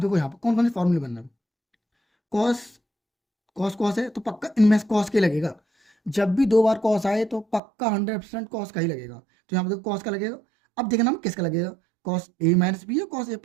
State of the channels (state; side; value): drops out; left; at 7.6 s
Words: यहाँ पर कौन कौन से फॉर्मूले बनना है। कॉस कॉस कॉस है तो पक्का इनमें कॉस के लगेगा। जब भी दो बार कॉस आए तो पक्का 100% कॉस का ही लगेगा। तो यहाँ पर देखो कॉस का लगेगा। अब देखना किसका लगेगा, कॉस ए माइनस बी या कॉस ए